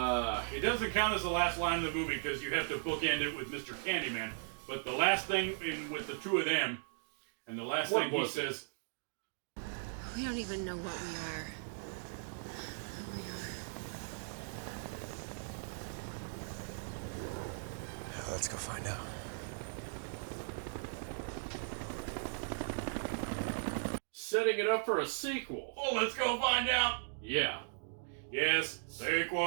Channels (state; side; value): silent; left; digital silence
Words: doesn't count as the last line of the movie because you have to bookend it with Mr. Candyman. But the last thing with the 2 of them, and the last thing he says, "We don't even know what we are. Who we are." Let's go find out. Setting it up for a sequel. "Oh, let's go find out." Yeah. Yes,